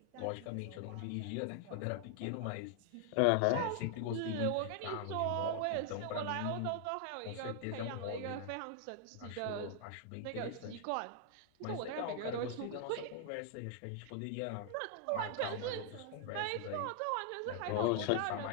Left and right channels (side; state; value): both; different; correlation 0.00